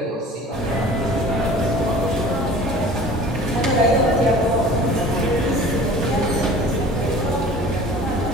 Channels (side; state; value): both; normal; correlation 0.44